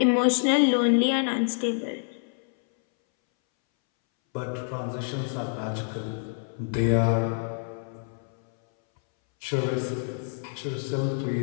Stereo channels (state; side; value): silent; right; 60 dB below the other